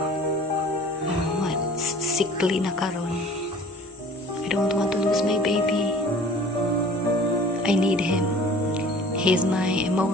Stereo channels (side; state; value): both; normal; correlation 0.47